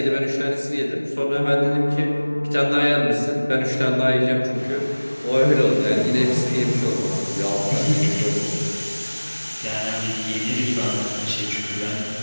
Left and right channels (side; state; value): both; inverted; correlation -1.00